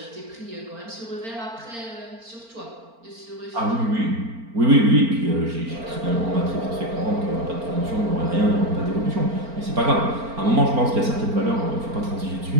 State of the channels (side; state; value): left; late; 4.4 ms